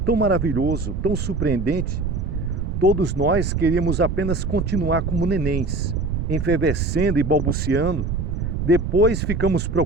maravilhoso, tão surpreendente? Todos nós queríamos apenas continuar como nenéns, enfervescendo e balbuciando. Depois ficamos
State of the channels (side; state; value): right; noise; rumble, 3 dB below the sound